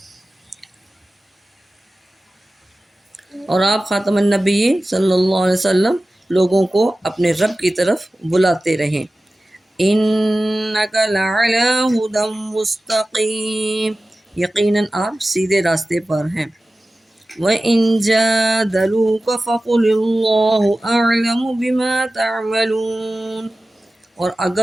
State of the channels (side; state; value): both; normal; correlation 0.96